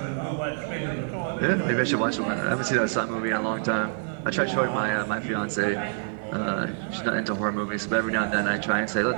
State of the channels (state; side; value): silent; left; 61 dB below the other